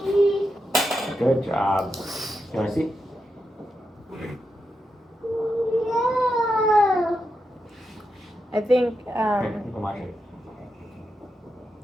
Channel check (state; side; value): normal; both; correlation 0.86